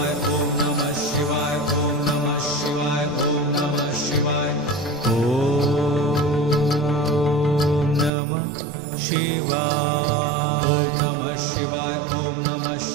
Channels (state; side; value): drops out; left; at 8.1 s